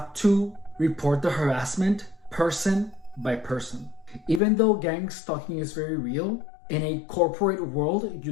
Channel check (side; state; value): right; drops out; at 4.4 s